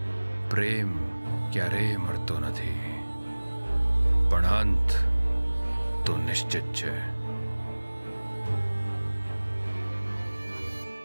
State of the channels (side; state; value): both; inverted; correlation -1.00